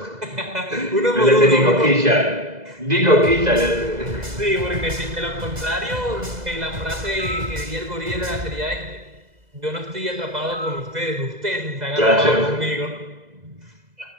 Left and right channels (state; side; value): late; left; 2.0 ms